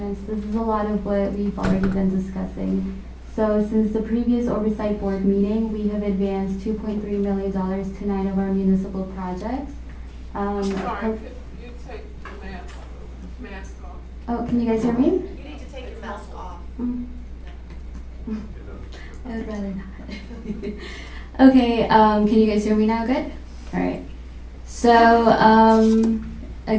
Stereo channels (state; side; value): identical; both; correlation 1.00